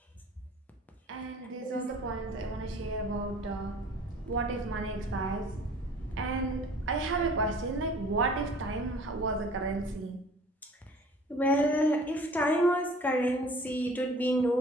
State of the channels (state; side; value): normal; both; correlation 0.49